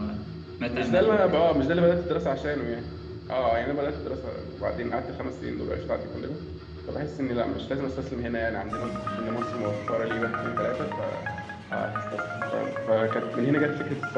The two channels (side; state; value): both; identical; correlation 1.00